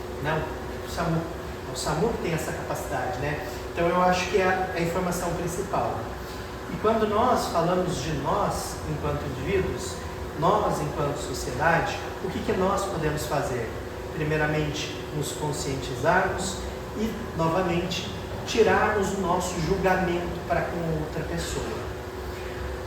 Não, o SAMU. O SAMU tem essa capacidade, né? Então eu acho que é a informação principal. E quando nós falamos de nós, enquanto indivíduos, nós enquanto sociedade, o que nós podemos fazer? Primeiramente, nos conscientizarmos e, novamente, tirarmos o nosso julgamento para com outra pessoa.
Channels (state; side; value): identical; both; correlation 1.00